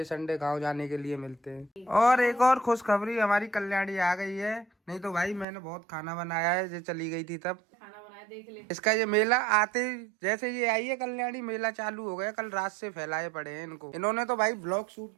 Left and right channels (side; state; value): left; drops out; at 5.5 s